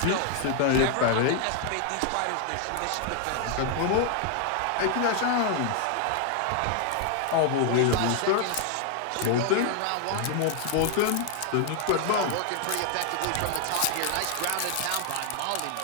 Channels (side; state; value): both; different; correlation 0.00